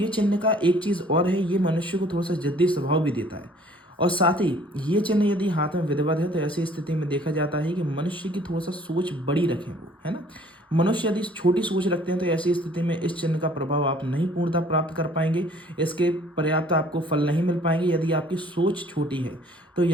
चिन्ह का एक चीज़ और है, ये मनुष्य को थोड़ा सा जिद्दी स्वभाव भी देता है। और साथ ही ये चिन्ह यदि हाथ में विधिवत है तो ऐसी स्थिति में देखा जाता है कि मनुष्य की थोड़ा सा सोच बड़ी रखें वो, है ना। मनुष्य यदि छोटी सोच रखते हैं तो ऐसी स्थिति में इस चिन्ह का प्रभाव आप नहीं पूर्णतः प्राप्त कर पाएंगे। इसके पर्याप्त आपको फल नहीं मिल पाएंगे यदि आपकी सोच छोटी है। तो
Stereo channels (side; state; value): both; normal; correlation 0.55